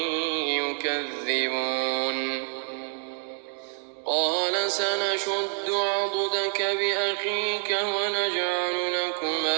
يكذبون قال سنشد عضدك بأخيك ونجعل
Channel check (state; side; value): silent; left; 60 dB below the other